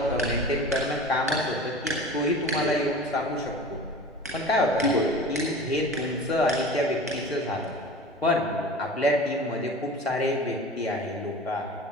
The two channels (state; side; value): normal; both; correlation 0.37